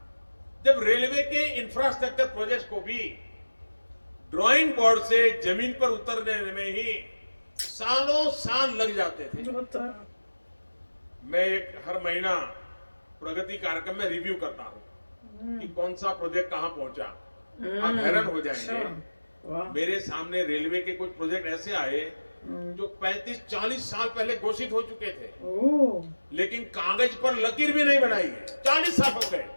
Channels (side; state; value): both; inverted; correlation -1.00